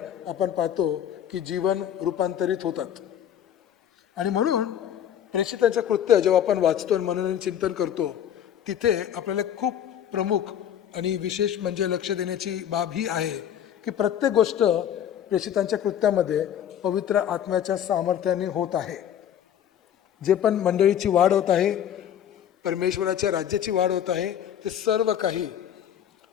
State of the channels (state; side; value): quieter; right; 9.9 dB